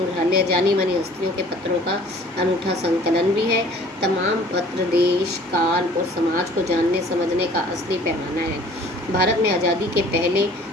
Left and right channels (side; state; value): both; normal; correlation 0.51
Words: जानी मानी हस्तियों के पत्रों का अनूठा संकलन भी है। तमाम पत्र देश, काल और समाज को जानने समझने का असली पैमाना है। भारत में आज़ादी के पहले